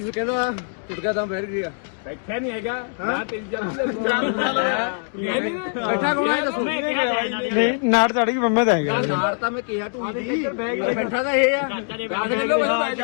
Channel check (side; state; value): right; silent; 60 dB below the other